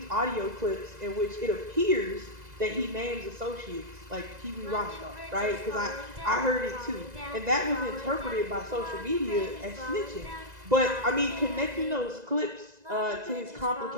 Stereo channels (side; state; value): left; late; 2.0 ms